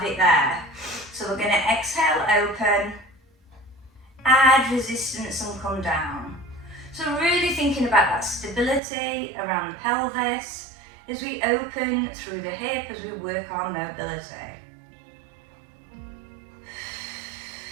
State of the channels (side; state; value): left; drops out; at 8.8 s